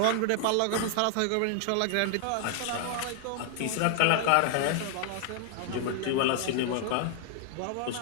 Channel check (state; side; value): different; both; correlation 0.00